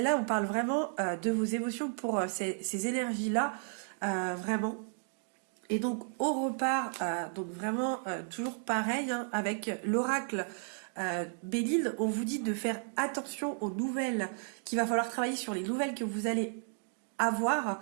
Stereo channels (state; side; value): silent; left; 56 dB below the other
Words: on parle vraiment de vos émotions pour ces énergies-là, vraiment. Et donc on repart, donc vraiment toujours pareil, hein, avec l'oracle Béline, on vous dit de faire attention aux nouvelles, qu'il va falloir travailler sur les nouvelles que vous allez avoir,